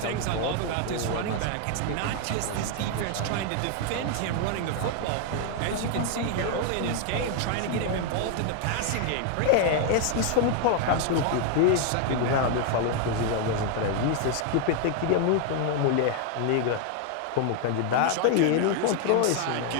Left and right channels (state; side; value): different; both; correlation 0.00